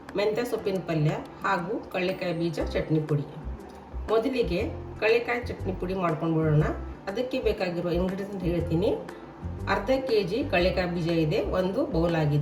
ಮೆಂತ್ಯ ಸೊಪ್ಪಿನ ಪಲ್ಯ ಹಾಗೂ ಕಳ್ಳೆಕಾಯಿ ಬೀಜ ಚಟ್ನಿ ಪುಡಿ. ಮೊದಲಿಗೆ ಕಳ್ಳೆಕಾಯಿ ಚಟ್ನಿ ಪುಡಿ ಮಾಡ್ಕೊಂಡು ಬಿಡೋಣ. ಅದಕ್ಕೆ ಬೇಕಾಗಿರುವ ಇಂಗ್ರೀಡಿಯೆಂಟ್ ಹೇಳ್ತೀನಿ. ಅರ್ಧ kg ಕಳ್ಳೆಕಾಯಿ ಬೀಜ ಇದೆ, ಒಂದು ಬೌಲ್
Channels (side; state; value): both; identical; correlation 1.00